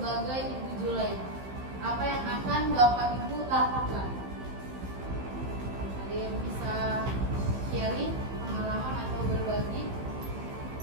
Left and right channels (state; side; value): late; left; 15 ms